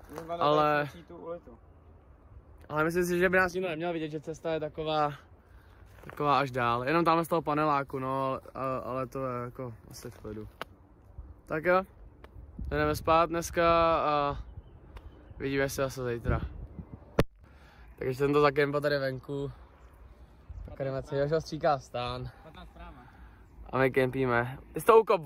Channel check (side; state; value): both; identical; correlation 1.00